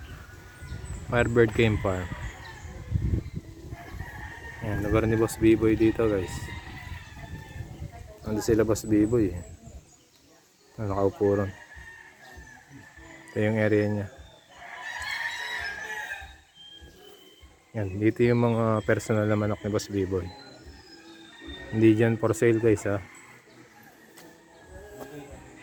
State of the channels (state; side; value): identical; both; correlation 1.00